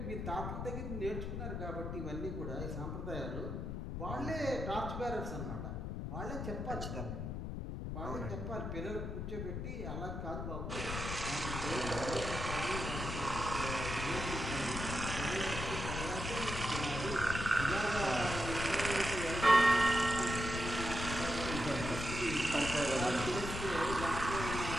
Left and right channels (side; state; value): left; noise; rumble, 4 dB below the sound